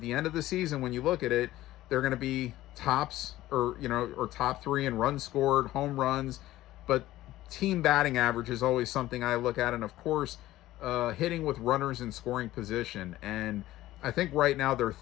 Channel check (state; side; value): quieter; right; 15.6 dB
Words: the end of the season, when you look at it, they're going to be tops or top 3 in runs scored, home runs, but team batting average is always something I look at, and of course, hitting with runners in scoring position. And I think right now they're